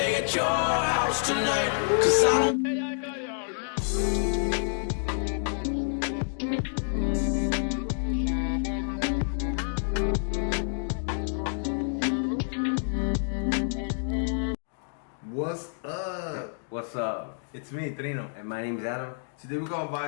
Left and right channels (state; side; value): silent; right; digital silence